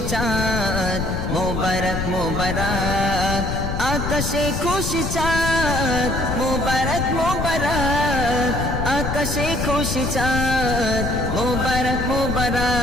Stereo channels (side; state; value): left; noise; rumble, 2 dB below the sound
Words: চাঁদ মোবারক মোবারক আকাশে খুশি চাঁদ মোবারক মোবারক আকাশে খুশি চাঁদ মোবারক